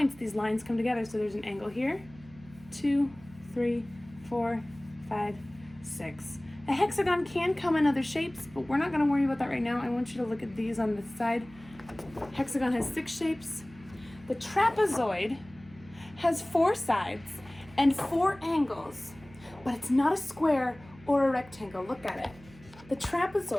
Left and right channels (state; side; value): noise; right; hum, 22 dB below the sound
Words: these lines come together. So there's an angle here, 2, 3, 4, 5, 6. A hexagon can come in other shapes, but we're not going to worry about that right now. I want you to look at these on this side. Hexagon has 6 shapes. The trapezoid has 4 sides and 4 angles, but it's not a square or a rectangle. Look at it. The